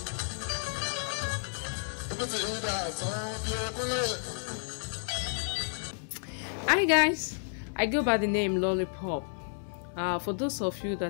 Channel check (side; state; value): right; silent; digital silence